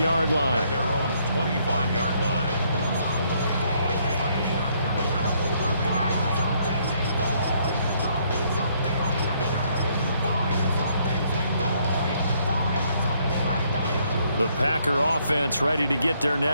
line. At their own 25-yard line. The Packer offense ready to get their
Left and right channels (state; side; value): inverted; both; correlation -0.69